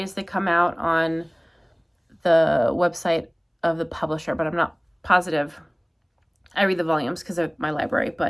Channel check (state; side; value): identical; both; correlation 1.00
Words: as they come out on the website of the publisher, but I'm not positive. I read the volumes because of my library,